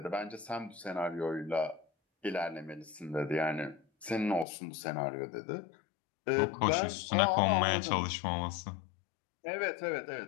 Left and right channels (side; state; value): right; drops out; at 4.5 s